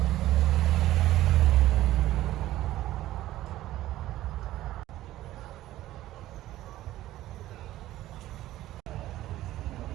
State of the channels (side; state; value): left; quieter; 14.9 dB